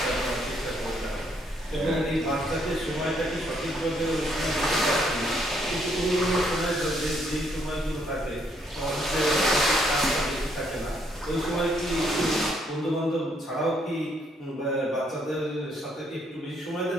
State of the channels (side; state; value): both; normal; correlation 0.71